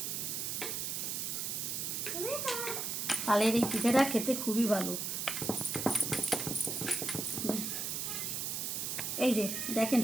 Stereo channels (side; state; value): right; noise; hiss, 2 dB below the sound